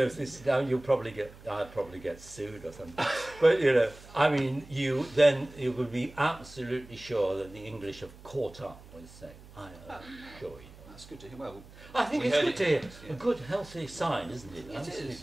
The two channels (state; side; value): noise; right; hum, 20 dB below the sound